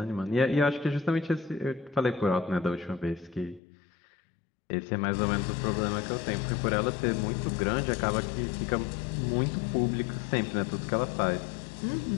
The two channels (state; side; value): drops out; right; at 3.6 s